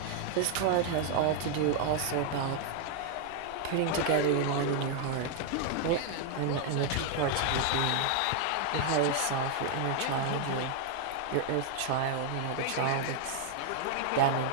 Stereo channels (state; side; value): different; both; correlation 0.00